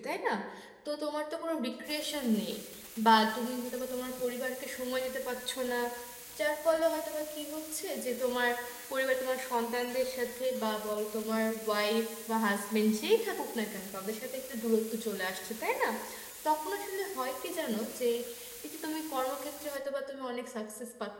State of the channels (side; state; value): both; identical; correlation 1.00